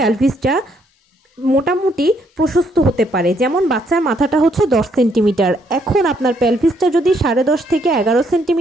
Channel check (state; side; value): normal; both; correlation 0.71